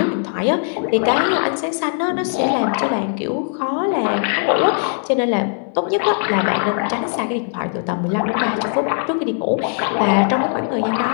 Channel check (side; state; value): right; silent; 64 dB below the other